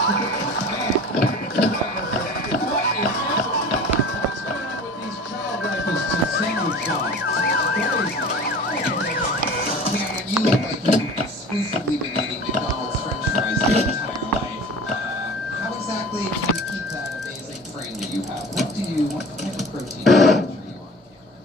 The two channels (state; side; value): normal; both; correlation 0.40